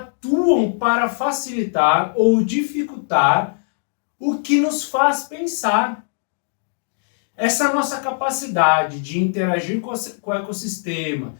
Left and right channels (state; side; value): silent; right; digital silence